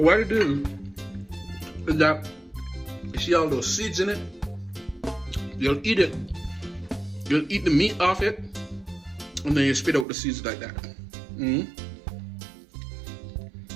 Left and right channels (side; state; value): left; drops out; at 10.1 s